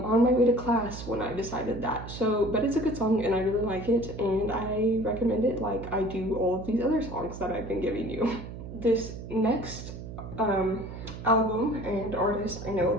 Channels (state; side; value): noise; right; hum, 10 dB below the sound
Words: my way to class when I decided that. So, but it's a good song and I really like it, and I recommend it like I do all of these other songs that I've been giving you. This next album and artist I know a